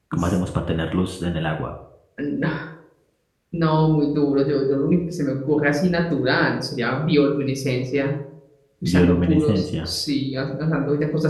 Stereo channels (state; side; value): identical; both; correlation 1.00